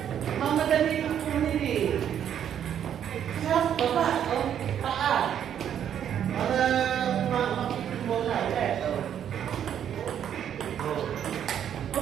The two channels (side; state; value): left; quieter; 9.4 dB